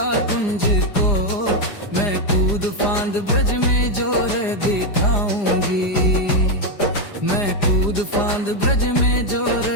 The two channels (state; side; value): late; right; 4.9 ms